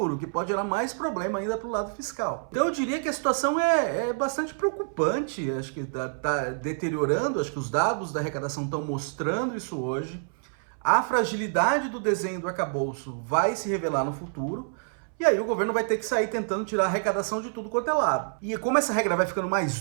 que pode gerar mais problema ainda para o lado fiscal. Então eu diria que a situação é bastante preocupante, acho que está deteriorando, acho que os dados da arrecadação estão mostrando isso hoje. A fragilidade do desenho do arcabouço vai se revelar no futuro, e aí o governo vai ter que sair tentando tirar a arrecadação de tudo quanto é lado. E como essa regra vai ficando mais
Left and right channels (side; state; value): left; silent; 60 dB below the other